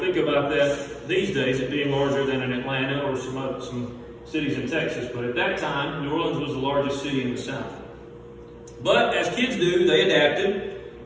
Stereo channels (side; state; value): both; identical; correlation 1.00